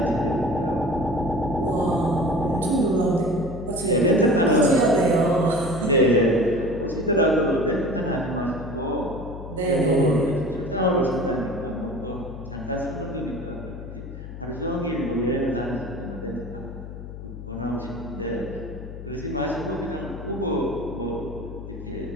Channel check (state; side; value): noise; left; hum, 11 dB below the sound